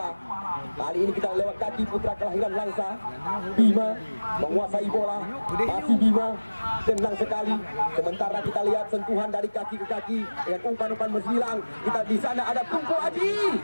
Kali ini kita lewat kaki putra kelahiran Langsa. Bima menguasai bola. Masih Bima, tenang sekali. Sementara kita lihat sentuhan dari kaki ke kaki dengan umpan-umpan menghilang. Kita di sana ada Tengku Aji.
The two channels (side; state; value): both; inverted; correlation -1.00